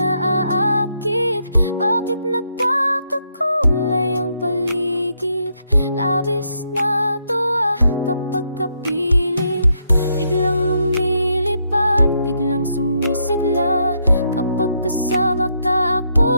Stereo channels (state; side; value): inverted; both; correlation -0.77